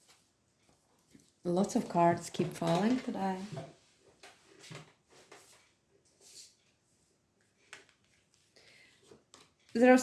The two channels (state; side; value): identical; both; correlation 1.00